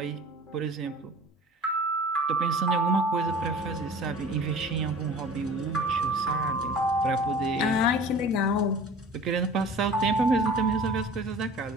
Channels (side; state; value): both; normal; correlation 0.43